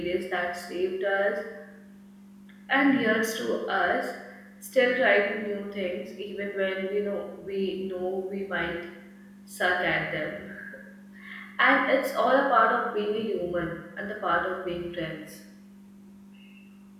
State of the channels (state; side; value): identical; both; correlation 1.00